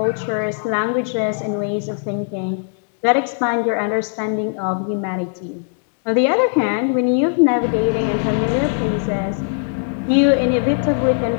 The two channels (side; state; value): right; silent; digital silence